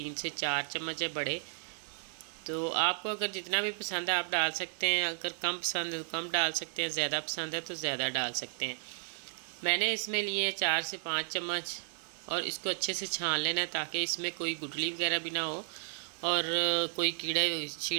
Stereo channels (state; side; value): silent; left; 55 dB below the other